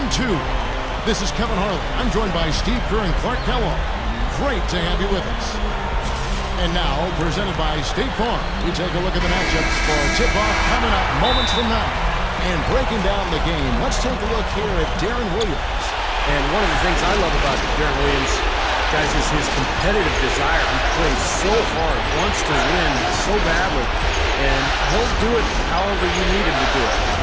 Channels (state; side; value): identical; both; correlation 1.00